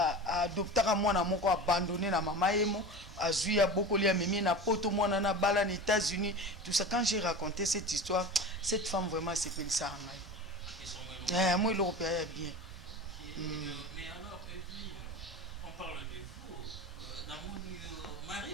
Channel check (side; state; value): both; normal; correlation 0.31